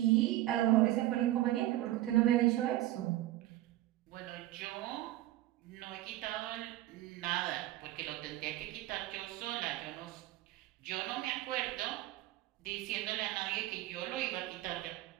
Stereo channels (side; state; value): left; quieter; 15.4 dB